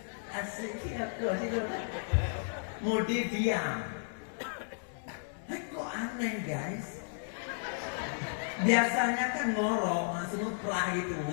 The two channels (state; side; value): silent; right; digital silence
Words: Asyik kau sih mode diam. Kok aneh guys. Biasanya kan ngorok semua perah itu